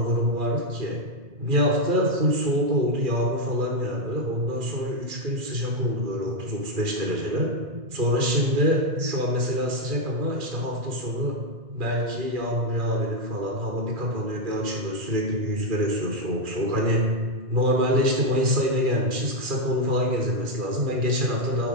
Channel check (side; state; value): left; late; 2.4 ms